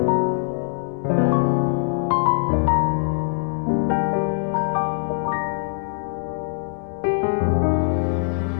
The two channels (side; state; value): right; silent; 64 dB below the other